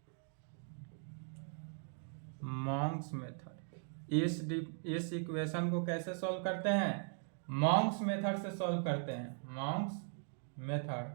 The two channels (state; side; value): silent; left; 51 dB below the other